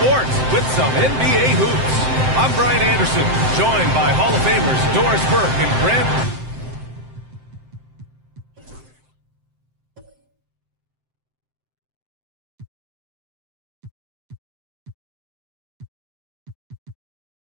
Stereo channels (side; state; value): left; late; 7.7 ms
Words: with some NBA hoops. I'm Brian Anderson, joined by Hall of Famers Doris Burke and Grant.